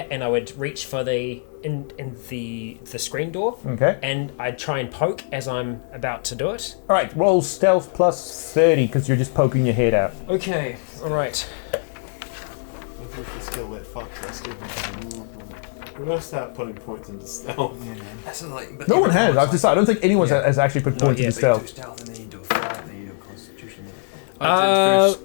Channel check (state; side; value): silent; right; digital silence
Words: and I would reach for the screen door. Okay. And I'd try and poke as I'm about to do it. All right, roll stealth plus 30 because you're just poking your head out. Okay, all right. Skill that fucks us. We're gonna start putting points into stealth. Yeah, man. That's like, No one has. I've decided. I don't think anyone has actually put points into stealth. stealth and then you do a fight and then you do a constitution. I did first